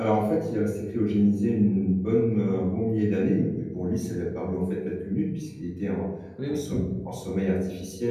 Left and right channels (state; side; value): identical; both; correlation 1.00